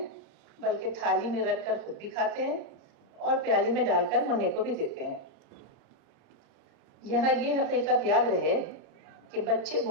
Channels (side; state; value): left; late; 29 ms